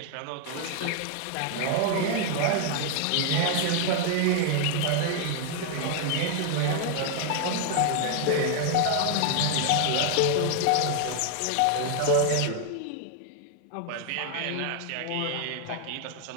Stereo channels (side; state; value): both; different; correlation 0.00